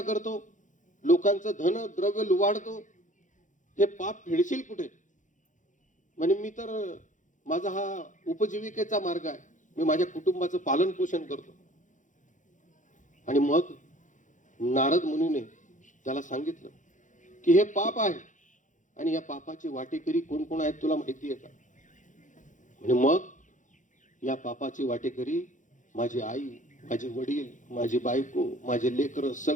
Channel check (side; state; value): right; late; 0.37 ms